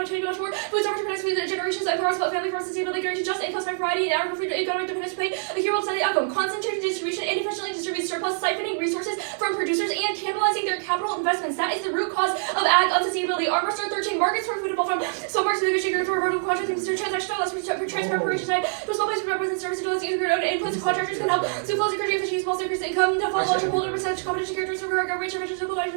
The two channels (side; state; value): left; silent; 62 dB below the other